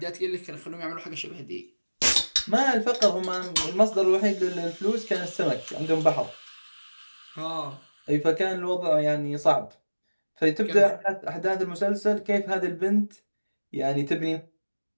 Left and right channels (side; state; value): both; inverted; correlation -1.00